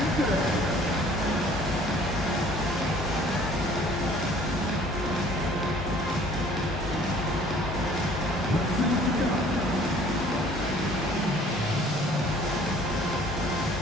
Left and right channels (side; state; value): both; normal; correlation 0.54